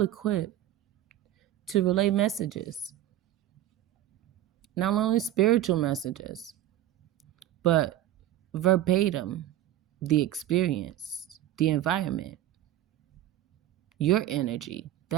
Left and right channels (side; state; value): left; quieter; 13.1 dB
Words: equipped to relay messages. Not only spiritual messages, but verbatim, the experience, the environment, your energy,